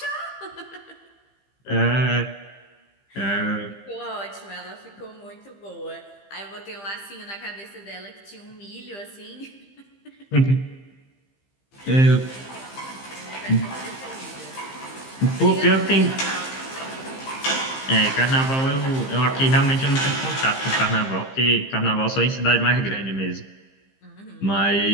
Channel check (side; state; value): right; late; 15 ms